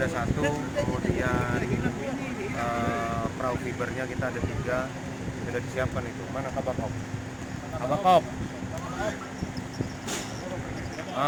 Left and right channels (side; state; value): both; identical; correlation 1.00